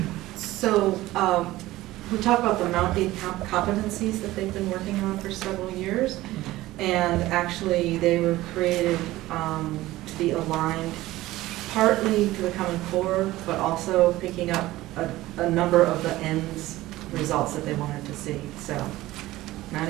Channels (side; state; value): left; quieter; 17.1 dB